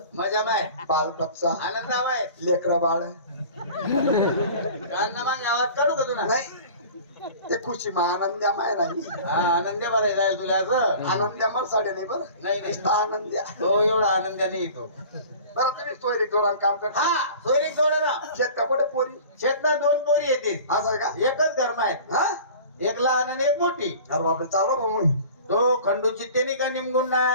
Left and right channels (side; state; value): both; inverted; correlation -0.42